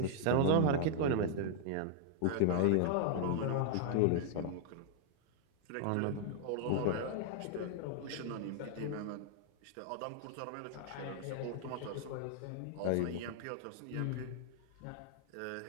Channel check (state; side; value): different; both; correlation -0.01